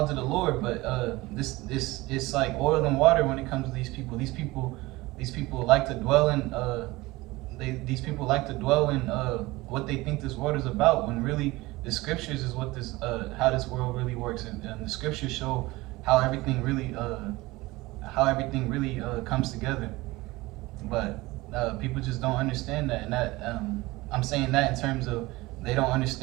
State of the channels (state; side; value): quieter; left; 20.5 dB